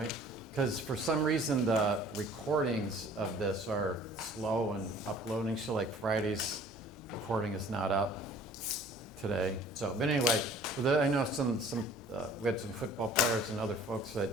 Because for some reason the recordings of this are slow and uploading. So like Friday's recording is not up today. So, but anyway, I know we had some football players and other folks that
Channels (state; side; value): normal; both; correlation 0.51